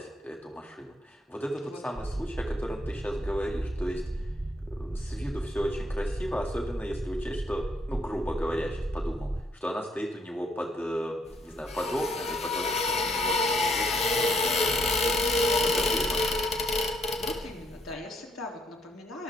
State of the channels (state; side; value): normal; both; correlation 0.72